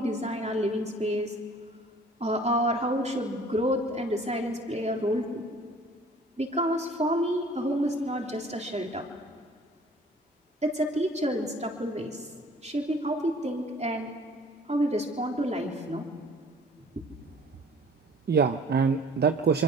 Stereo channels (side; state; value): both; normal; correlation 0.51